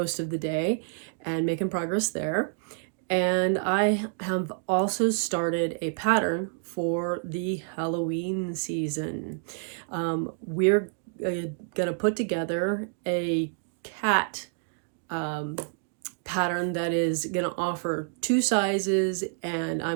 of the day and making progress there. And I have also started a pattern for the Halloween season. We're gonna put together a cat pattern that is going to offer two sizes, and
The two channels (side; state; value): left; silent; 59 dB below the other